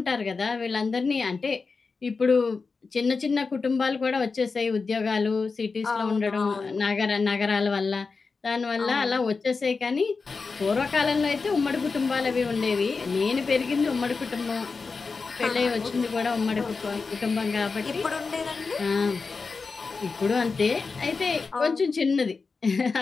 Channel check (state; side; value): quieter; right; 4.5 dB